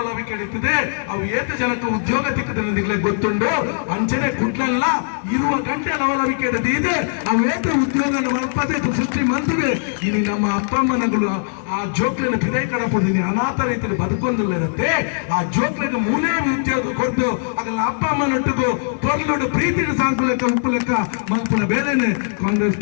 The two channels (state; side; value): silent; right; 59 dB below the other